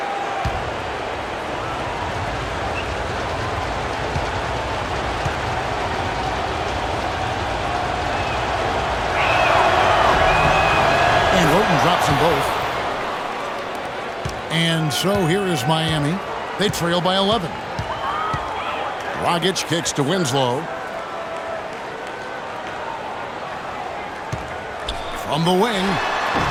And Roten drops them both. And so here is Miami. They trail by 11. Dragic kicks to Winslow. From the wing.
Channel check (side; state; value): both; identical; correlation 1.00